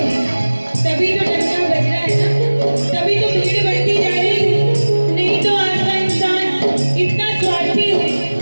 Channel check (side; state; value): both; inverted; correlation -1.00